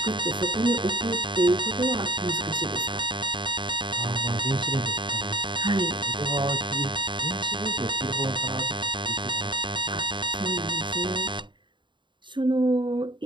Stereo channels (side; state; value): left; late; 0.23 ms